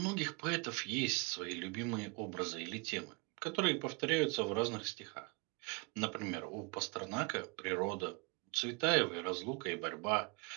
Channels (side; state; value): left; quieter; 31.8 dB